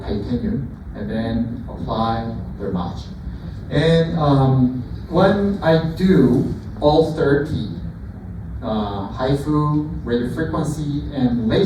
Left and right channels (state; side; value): identical; both; correlation 1.00